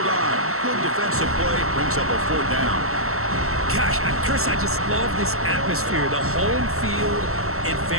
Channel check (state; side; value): late; left; 0.63 ms